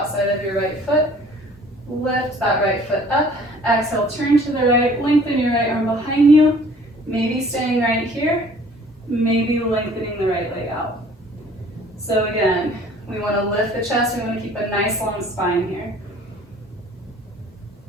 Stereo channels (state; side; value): normal; both; correlation 0.53